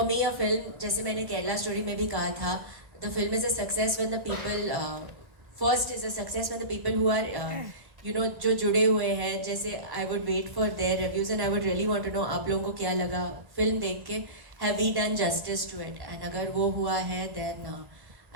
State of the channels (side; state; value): left; late; 1.1 ms